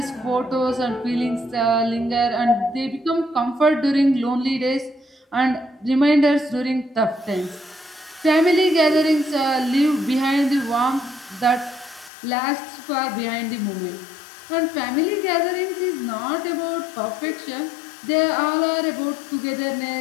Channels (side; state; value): right; drops out; at 12.1 s